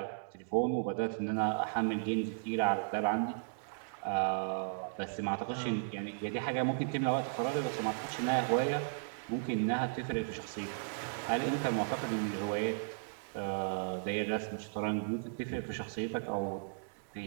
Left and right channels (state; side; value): silent; left; digital silence